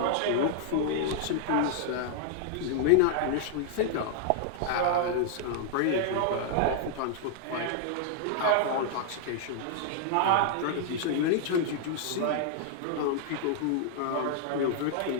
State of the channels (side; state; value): both; different; correlation -0.01